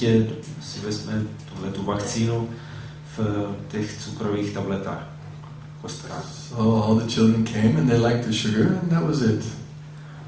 si vezme tu vakcínu v těch cukrových tabletách, kostkách. So all the children came and they liked the sugar and that was it.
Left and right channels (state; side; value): identical; both; correlation 1.00